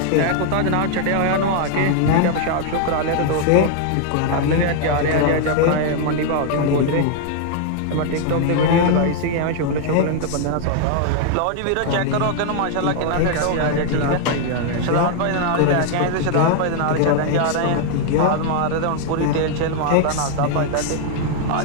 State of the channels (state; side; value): different; both; correlation 0.00